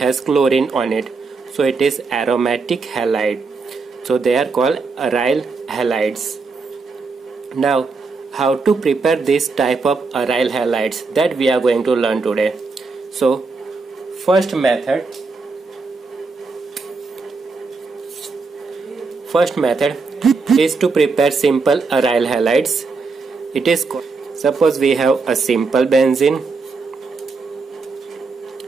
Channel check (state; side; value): quieter; left; 4.3 dB